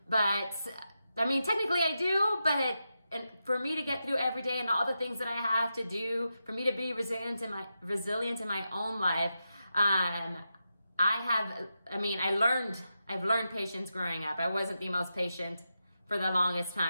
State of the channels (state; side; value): inverted; both; correlation -0.89